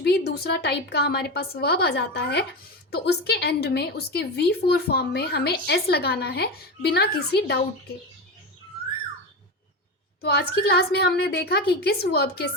भी दूसरा टाइप का हमारे पास वर्ब आ जाता है, तो उसके एंड में उसके V4 फॉर्म में हमें S लगाना है बिना किसी डाउट के। तो आज की क्लास में हमने देखा कि किस वर्ब के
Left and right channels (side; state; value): both; normal; correlation 0.20